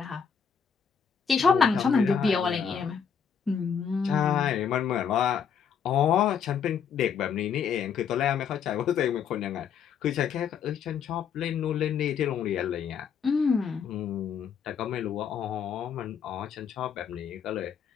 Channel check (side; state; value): right; quieter; 7.2 dB